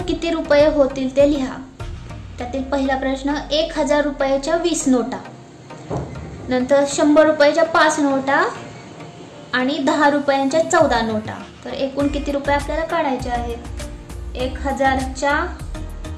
किती रुपये होतील ते लिहा. त्यातील पहिला प्रश्न, 1,000 रुपयाच्या 20 नोटा, नंतर 100 रुपयाच्या 5 नोटा आणि 10 रुपयांच्या 14 नोटा. तर एकूण किती रुपये आपल्याला काढायचे आहेत. 1,000च्या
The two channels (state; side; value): identical; both; correlation 1.00